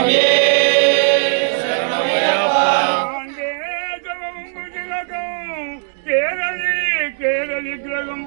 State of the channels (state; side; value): silent; left; digital silence